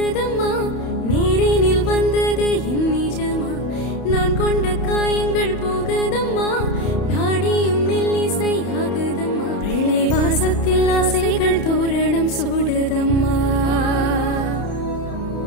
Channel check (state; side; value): late; right; 31 ms